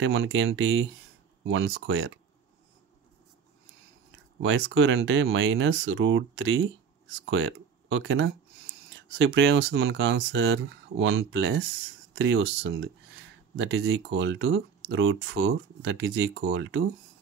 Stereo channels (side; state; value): left; quieter; 6.5 dB